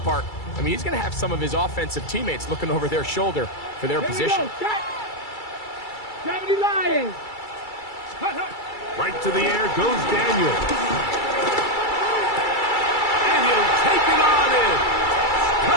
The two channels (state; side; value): late; right; 2.3 ms